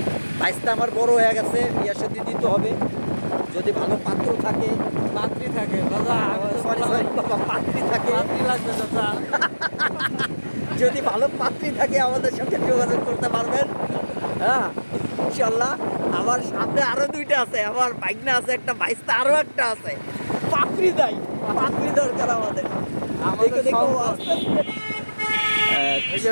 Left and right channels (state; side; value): inverted; both; correlation -1.00